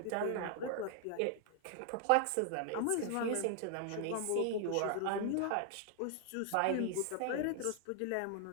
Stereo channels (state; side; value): different; both; correlation 0.00